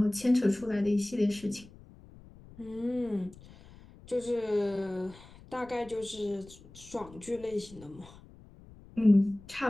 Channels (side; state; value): left; noise; rumble, 21 dB below the sound